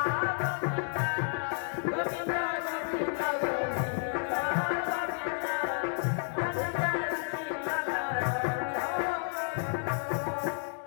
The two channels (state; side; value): silent; right; 57 dB below the other